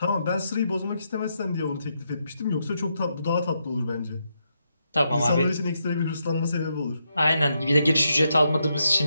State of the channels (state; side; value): inverted; both; correlation -0.81